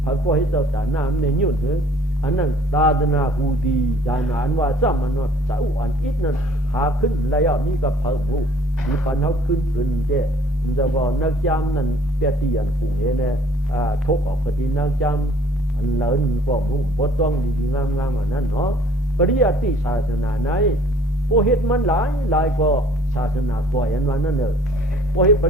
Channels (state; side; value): normal; both; correlation 0.56